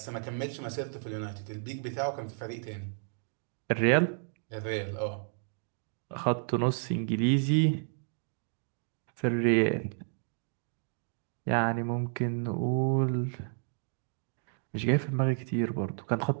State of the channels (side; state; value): left; silent; 56 dB below the other